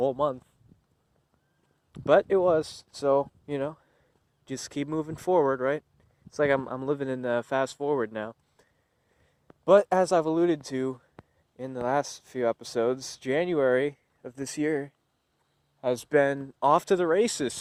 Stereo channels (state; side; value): identical; both; correlation 1.00